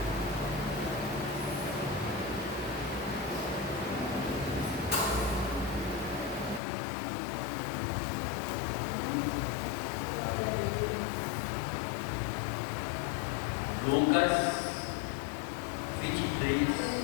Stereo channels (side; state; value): right; drops out; at 6.6 s